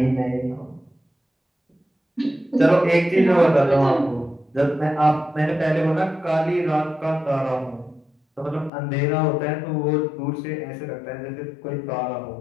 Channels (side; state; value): right; drops out; at 8.7 s